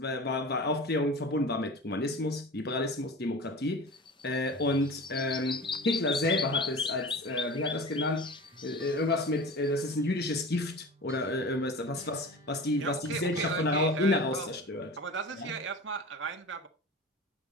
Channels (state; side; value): normal; both; correlation 0.35